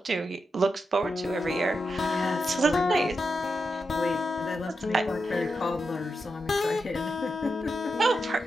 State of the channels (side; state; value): both; normal; correlation 0.86